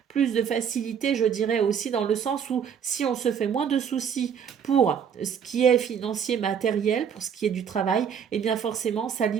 plus de facilité, je dirais aussi dans le sens où si on se fait moins de soucis pour ce qui est financier, matériel, pour ce qui est du travail, eh bien forcément, ça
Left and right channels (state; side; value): quieter; left; 7.6 dB